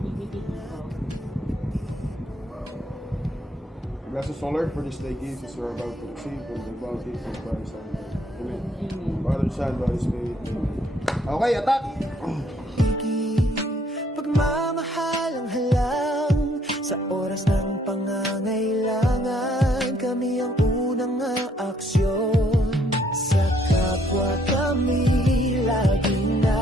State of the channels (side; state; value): both; normal; correlation 0.67